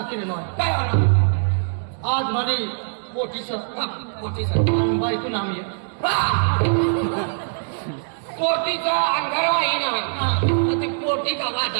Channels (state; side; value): silent; left; digital silence